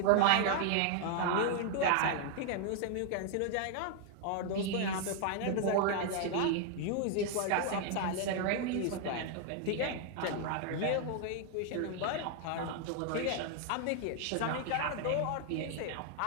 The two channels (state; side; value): different; both; correlation 0.00